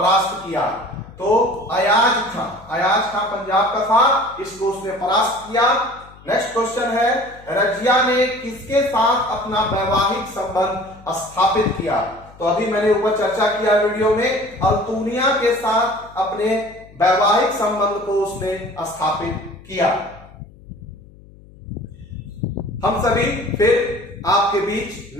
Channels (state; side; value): noise; left; hum, 23 dB below the sound